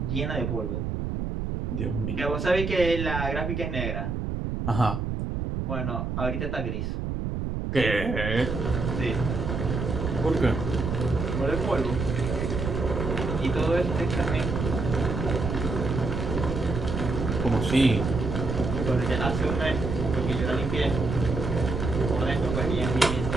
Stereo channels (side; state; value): right; noise; rumble, 3 dB below the sound